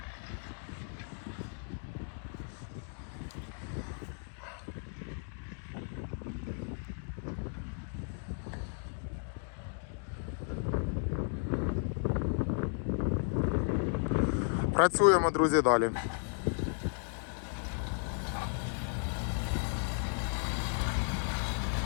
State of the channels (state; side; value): silent; right; 55 dB below the other